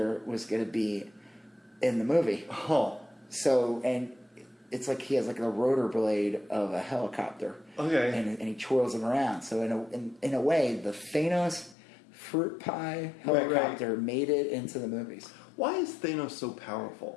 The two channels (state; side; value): drops out; right; at 11.8 s